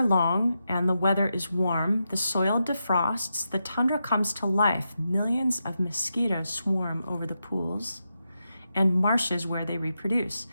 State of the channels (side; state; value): both; inverted; correlation -0.86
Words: long and the weather is warm. The soil defrosts, the tundra comes to life. Millions of mosquitoes swarm over the pools and marshes where they reproduce.